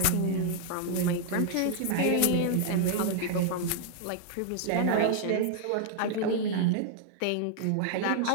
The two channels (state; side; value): different; both; correlation -0.01